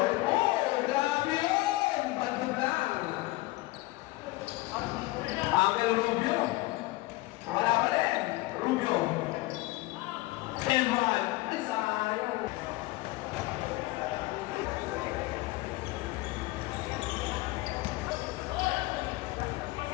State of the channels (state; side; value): quieter; right; 20.3 dB